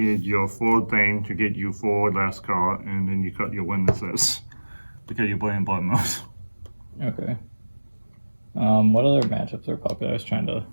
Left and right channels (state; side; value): inverted; both; correlation -1.00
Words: your 4 thing to get you 4 last card, and then you cut your witnesses because you're playing Blood Moons. Okay. What other matchups are popular? I was trying to.